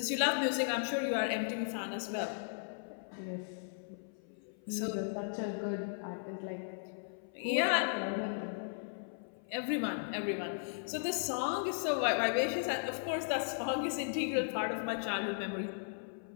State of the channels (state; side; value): silent; right; 53 dB below the other